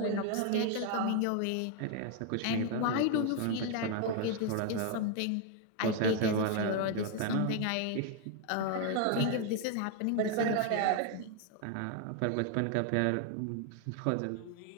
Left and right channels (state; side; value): different; both; correlation 0.00